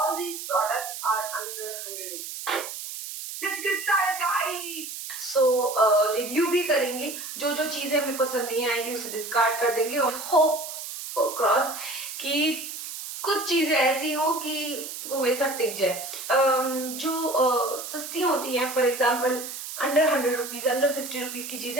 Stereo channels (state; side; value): noise; right; hiss, 8 dB below the sound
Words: these products are under 100 rupees. Let's get started guys. So review भी करेंगे, जो जो चीजें हमें पसंद नहीं आएंगी उसे डिस्कार्ड कर देंगे और होप क्रॉस कि कुछ चीजें ऐसी हो कि वो मेरे साथ टिक जाए. जो सस्ती होती हैं, for example under 100 rupees, under 50 rupees की